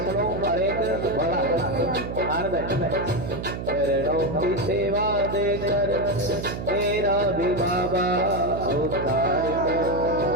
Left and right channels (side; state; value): right; noise; hum, 6 dB below the sound